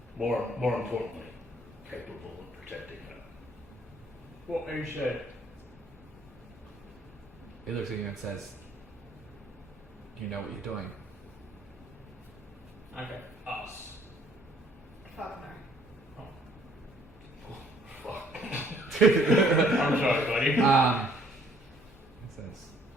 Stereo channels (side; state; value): both; normal; correlation 0.62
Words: More importantly, capable of protecting her. What you said. He looks at you and says, you know what you're doing. Okay. Us. Fuck no. Fuck. I'm sorry, buddy. He says,